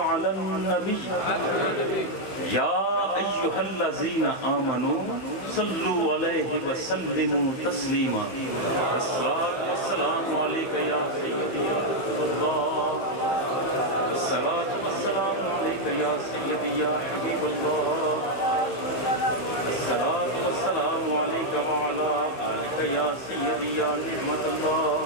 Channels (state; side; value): late; right; 15 ms